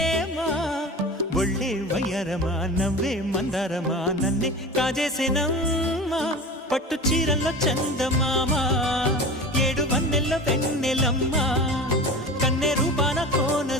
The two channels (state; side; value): normal; both; correlation 0.33